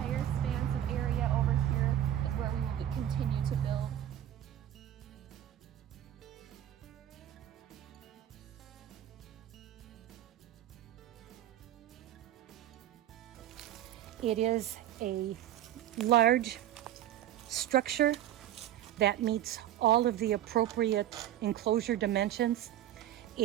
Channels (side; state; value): left; quieter; 11.9 dB